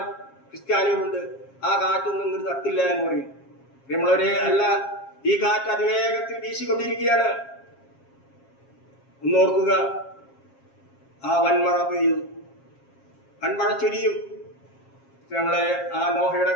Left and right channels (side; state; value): right; late; 7.4 ms